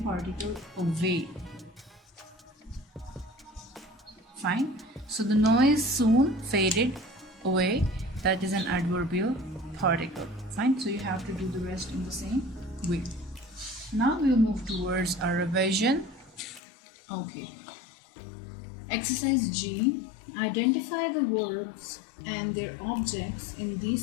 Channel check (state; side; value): drops out; right; at 16.6 s